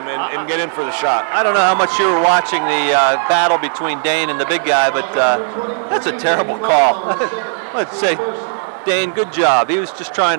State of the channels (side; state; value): left; silent; 64 dB below the other